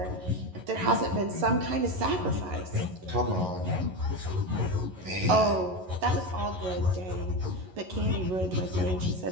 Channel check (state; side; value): late; left; 11 ms